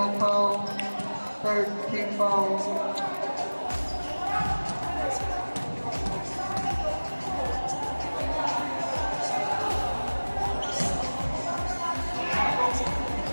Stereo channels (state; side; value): inverted; both; correlation -1.00